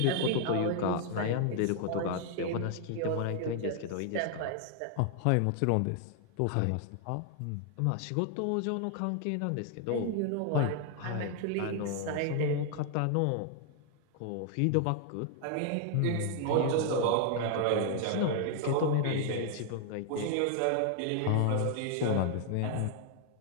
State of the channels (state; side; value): different; both; correlation 0.00